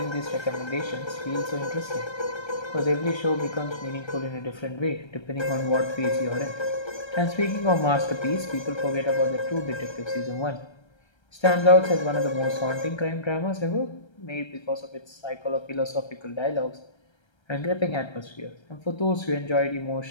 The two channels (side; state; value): right; late; 1.3 ms